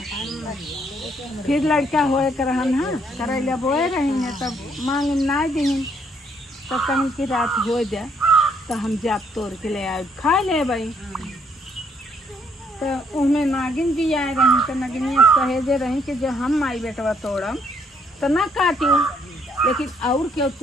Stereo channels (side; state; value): both; normal; correlation 0.69